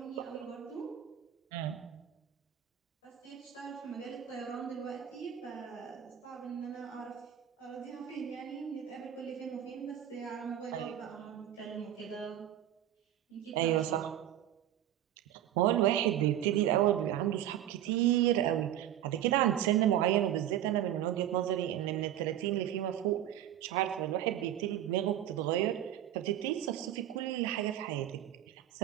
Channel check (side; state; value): left; quieter; 11.7 dB